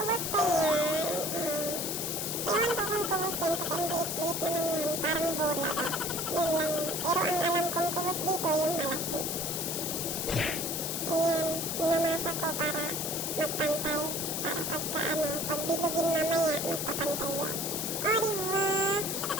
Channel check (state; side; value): noise; left; hiss, 2 dB below the sound